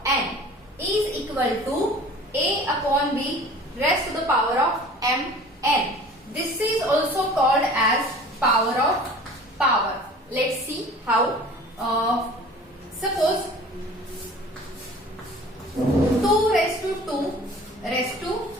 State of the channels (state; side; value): normal; both; correlation 0.45